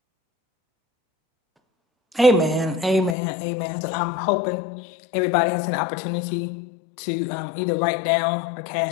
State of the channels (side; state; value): right; drops out; at 3.2 s